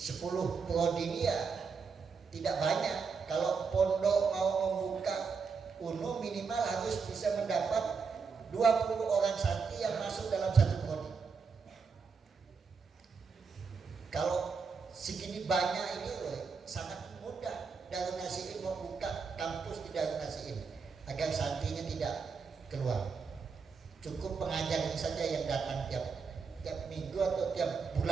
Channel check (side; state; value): left; quieter; 5.3 dB